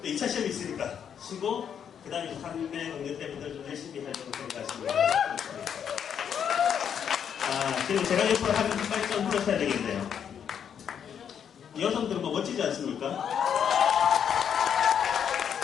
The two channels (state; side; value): quieter; right; 8.2 dB